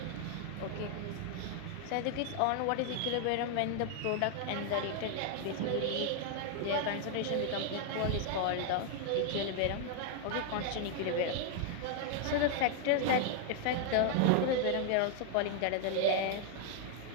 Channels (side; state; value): both; different; correlation 0.00